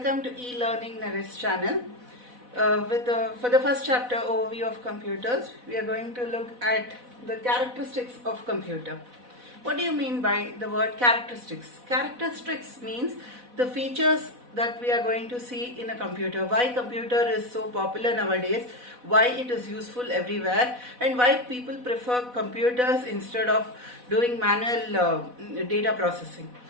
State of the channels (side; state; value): left; late; 4.1 ms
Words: to e-learning Naresh channel. For the first chapter overview of computers, we are going to look at the characteristics of computer. What do you mean by the word characteristics? Characteristics means the features that we are going to see in a computer, why computer is so popular nowadays, why it is useful everywhere, and why people prefer computers instead of doing manual data processing.